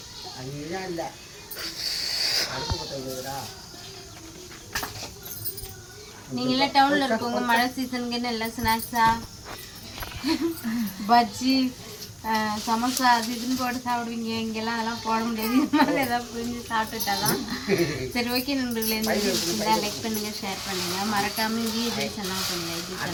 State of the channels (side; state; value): both; identical; correlation 1.00